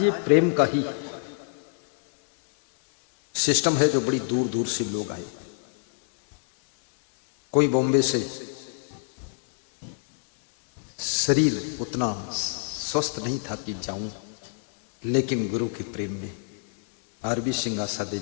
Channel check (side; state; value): right; silent; digital silence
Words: ये प्रेम का ही सिस्टम है जो बड़ी दूर दूर से लोग आए। कोई बॉम्बे से, शरीर उतना स्वस्थ नहीं था कि जाऊं, लेकिन गुरु के प्रेम ने आरबी सिंगासा